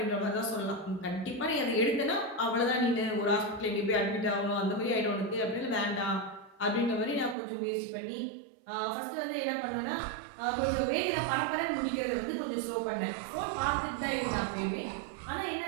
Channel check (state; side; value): drops out; left; at 7.4 s